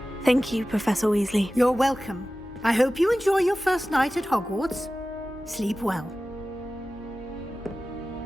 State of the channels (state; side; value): normal; both; correlation 0.95